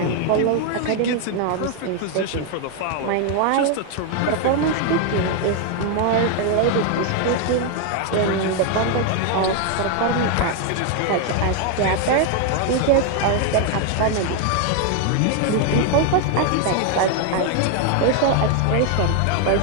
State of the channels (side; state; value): both; different; correlation 0.00